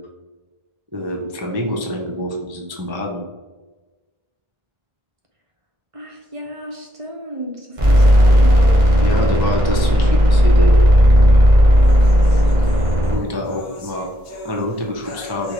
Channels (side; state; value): left; late; 1.1 ms